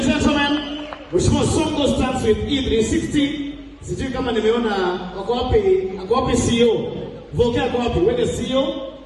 gentlemen, Mheshimiwa Songo starts with E360. Sijui kama nimeona wako wapi CEO? Voke ako wapi? Wewe CEO?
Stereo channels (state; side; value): identical; both; correlation 1.00